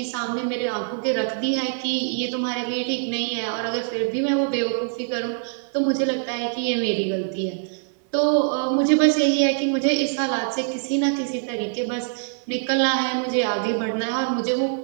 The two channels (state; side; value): silent; left; 63 dB below the other